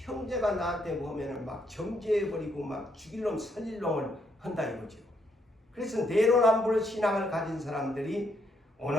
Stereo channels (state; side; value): normal; both; correlation 0.74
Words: 나한테 보면은 막 정죄해버리고 막 죽일 놈 살릴 놈을 한다 이거죠. 그래서 내로남불 신앙을 가진 사람들이